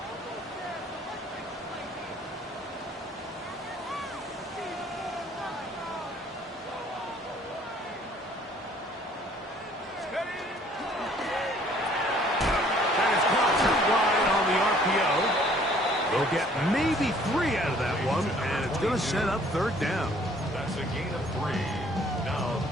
They'll get maybe 3 out of that one, and it's going to set up 3rd down. That's a gain of 3. Now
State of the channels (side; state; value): both; normal; correlation 0.58